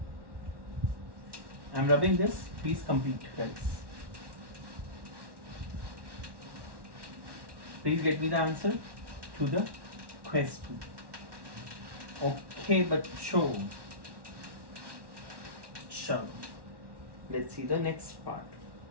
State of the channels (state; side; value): late; left; 1.1 ms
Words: I am rubbing this, please complete guys. Please get me the answer to the question. Okay, बच्चों, चलो, let's see the next part.